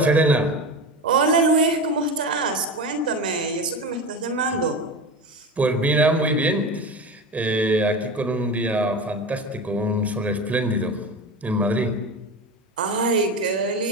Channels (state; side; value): normal; both; correlation 0.25